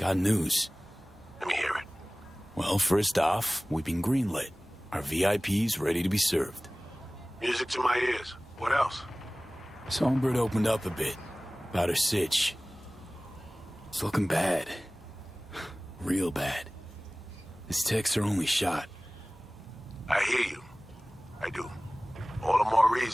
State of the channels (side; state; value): both; normal; correlation 0.98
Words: news. Let me hear it. Well, first off, we've been greenlit. Our VIP's ready to be served. Music to my ears. What else? Songbird opened up a bit about her sitch. It's looking bad. Real bad. This tech's her only shot. I hear you. I do. All the more